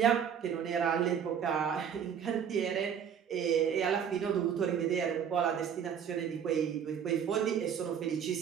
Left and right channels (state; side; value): quieter; left; 8.0 dB